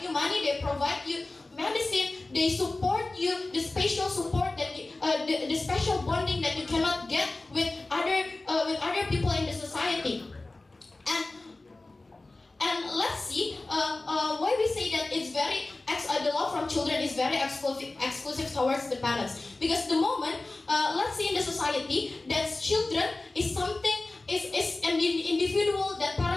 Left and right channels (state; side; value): quieter; right; 3.1 dB